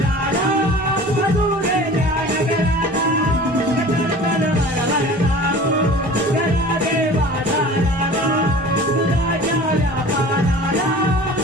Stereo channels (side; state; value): both; normal; correlation 0.42